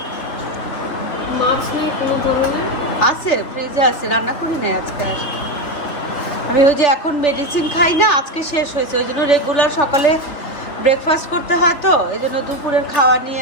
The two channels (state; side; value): late; right; 3.5 ms